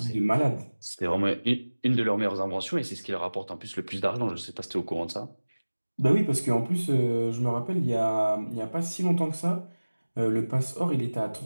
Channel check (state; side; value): inverted; both; correlation -1.00